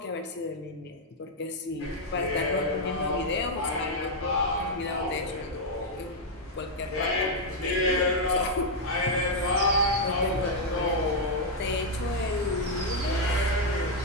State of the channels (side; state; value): both; normal; correlation -0.01